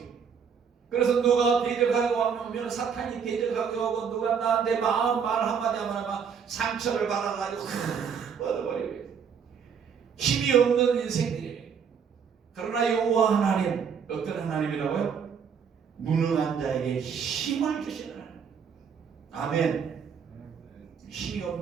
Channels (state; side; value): quieter; left; 6.8 dB